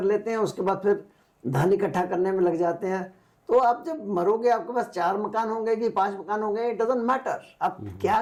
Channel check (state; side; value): identical; both; correlation 1.00